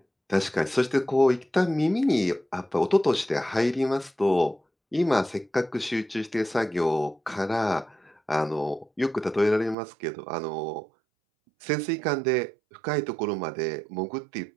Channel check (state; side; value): drops out; left; at 9.8 s